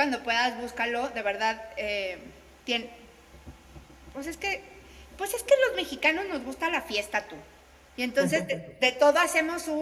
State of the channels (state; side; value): identical; both; correlation 1.00